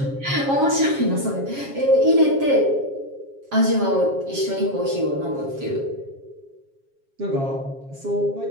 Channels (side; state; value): left; late; 7.3 ms